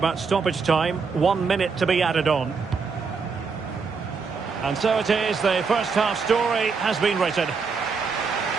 stoppage time, 1 minute to be added on. And so it is, the first half story has been written.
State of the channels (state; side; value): quieter; left; 5.2 dB